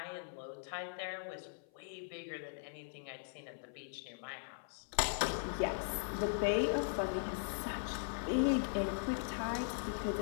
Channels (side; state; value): right; silent; 51 dB below the other